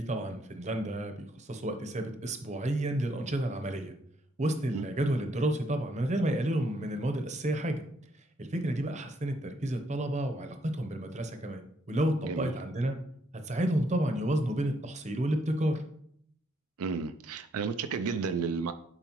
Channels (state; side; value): normal; both; correlation 0.72